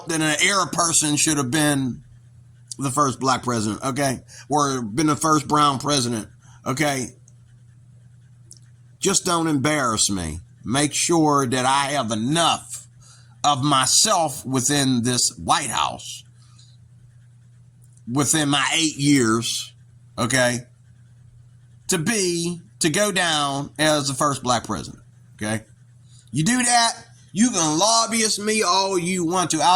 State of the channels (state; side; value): identical; both; correlation 1.00